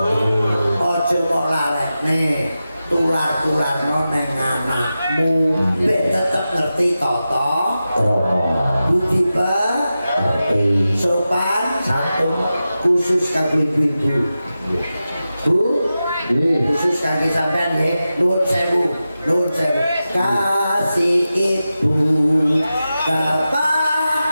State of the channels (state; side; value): inverted; both; correlation -0.93